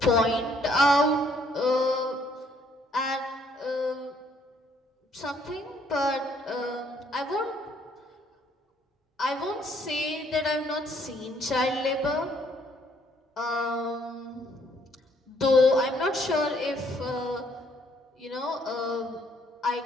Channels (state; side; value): normal; both; correlation 0.66